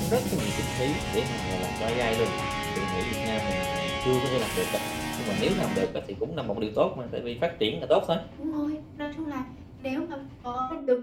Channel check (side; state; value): both; identical; correlation 1.00